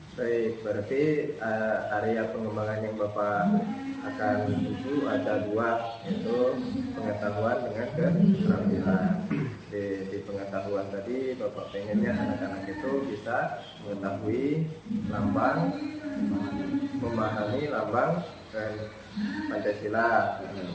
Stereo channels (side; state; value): both; identical; correlation 1.00